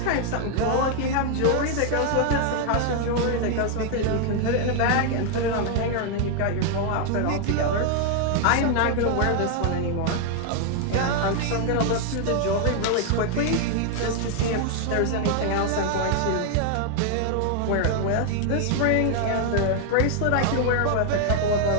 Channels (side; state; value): both; different; correlation 0.00